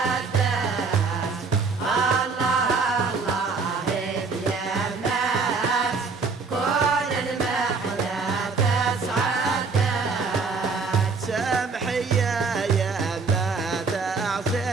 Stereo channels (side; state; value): left; quieter; 4.6 dB